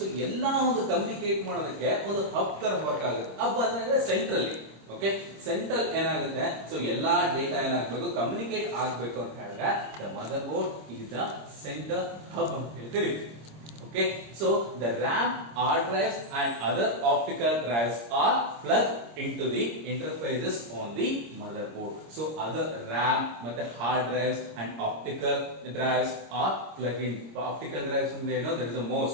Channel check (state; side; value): late; left; 26 ms